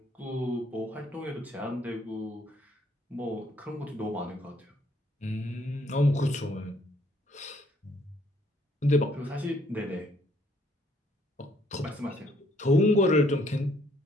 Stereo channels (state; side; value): normal; both; correlation 0.66